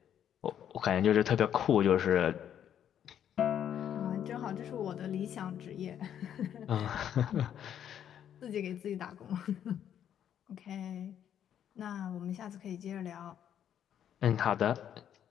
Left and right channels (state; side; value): quieter; right; 9.7 dB